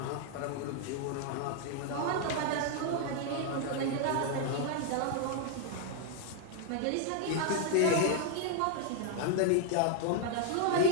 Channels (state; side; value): different; both; correlation 0.00